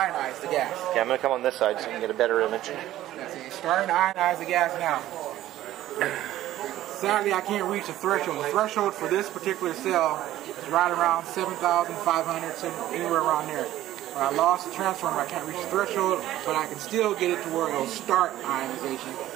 the gas. Okay, I'm going to come on this side so you can get a better image. It's starting to ionize the gas now. Sadly, I can't reach the threshold. The threshold for this particular cell is right around 7,500, anywhere around there. When I lost the transformer, I can't reach the threshold, but I can still get it to where it'll start ionization.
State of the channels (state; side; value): quieter; left; 14.0 dB